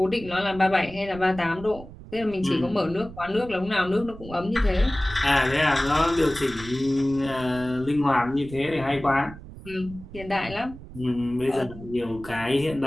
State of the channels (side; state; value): right; noise; rumble, 15 dB below the sound